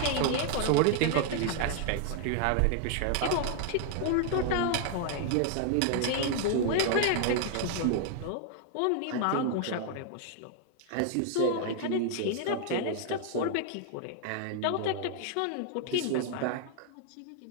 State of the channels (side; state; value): both; different; correlation 0.00